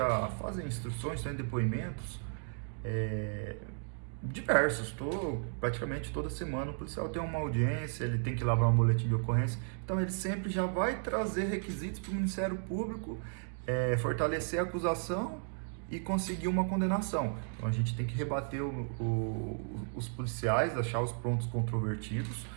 fazem instruções, têm depoimentos diversos. Praticamente toda semana o policial tem uma audiência, ele tem que elaborar um boletim de ocorrência. Então, ele sempre já vai trazer requisitos para o Ministério Público fortalecer a acusação e conseguir uma condenação. Então a gente tem que rebater os policiais, achar os pontos controvertidos,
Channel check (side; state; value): left; silent; 55 dB below the other